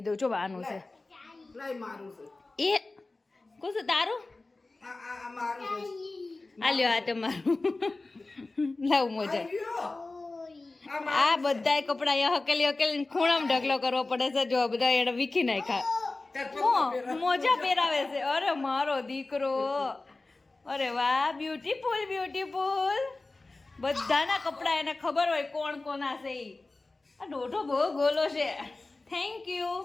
દઉં. જો બાનું છે એ કોણ તારું? આ લ્યો આ તમારું લાવ મોજા. આ બધાય કપડા અહીંયા હકેલી ખૂણામાં ઢગલો કરવો પડે છે. જો બધા એને વીખી નાખ્યા. મોજા પહેરાવે છે. અરે મારો દીકરો. અરે વાહ બ્યુટીફુલ. બધાના કપડા એને ખબર હોય કોણ કોના છે. આ દોઢો બહુ ગોલો છે. Thank you.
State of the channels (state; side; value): quieter; right; 3.3 dB